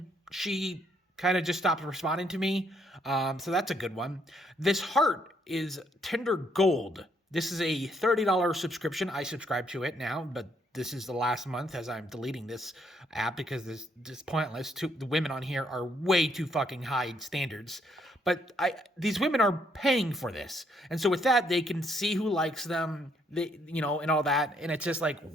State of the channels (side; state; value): both; normal; correlation 0.71